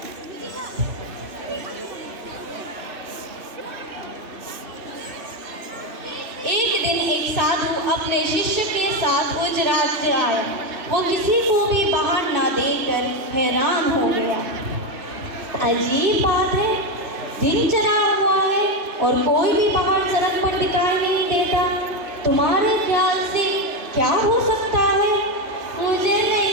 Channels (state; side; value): late; left; 2.6 ms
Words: एक दिन एक साधु अपने शिष्य के साथ उस राज्य आए। वो किसी को भी बाहर ना देखकर हैरान हो गया। अजीब बात है, दिन चढ़ा हुआ है और कोई भी बाहर सड़क पर दिखाई नहीं देता। तुम्हारे ख्याल से क्या हो सकता है? मुझे